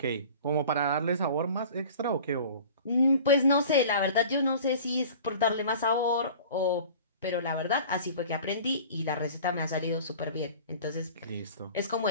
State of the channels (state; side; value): inverted; both; correlation -0.43